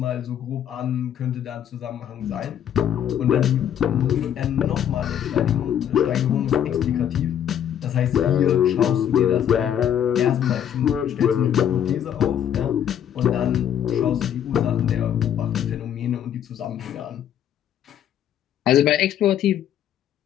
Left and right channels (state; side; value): quieter; right; 9.7 dB